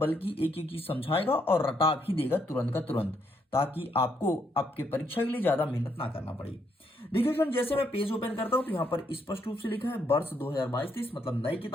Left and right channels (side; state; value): both; normal; correlation 0.75